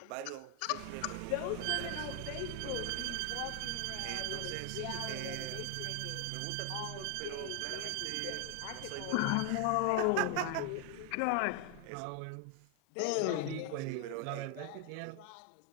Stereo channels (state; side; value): different; both; correlation 0.01